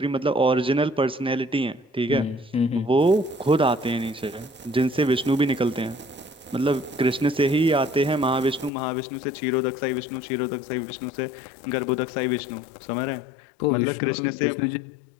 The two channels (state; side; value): drops out; right; at 8.7 s